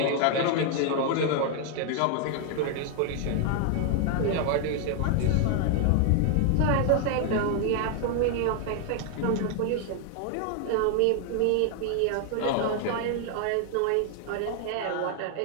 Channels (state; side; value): different; both; correlation 0.00